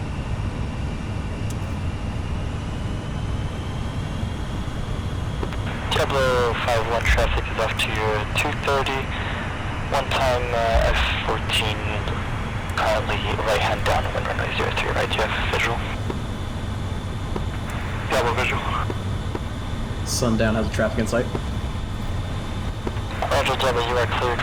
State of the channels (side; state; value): both; identical; correlation 1.00